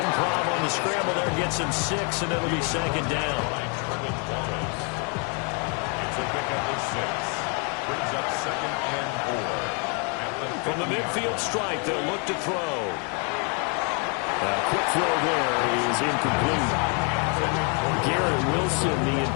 on the scramble there gets him 6, and it'll be 2nd down. It's a pickup of 6. Brings up 2nd and 4. From the midfield strike, they'll look to throw. Quick throw there is incomplete. Garrett Wilson, the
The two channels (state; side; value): quieter; right; 36.8 dB